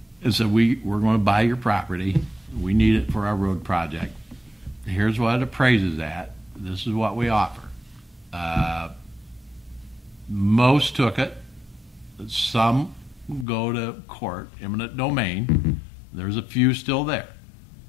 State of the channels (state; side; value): drops out; right; at 13.5 s